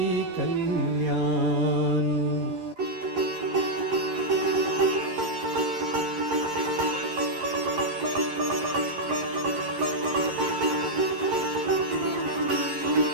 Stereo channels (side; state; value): left; late; 11 ms